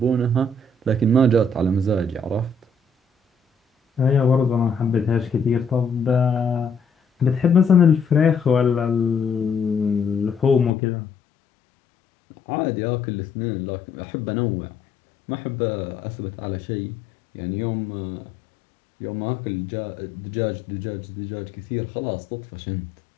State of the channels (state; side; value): drops out; right; at 10.7 s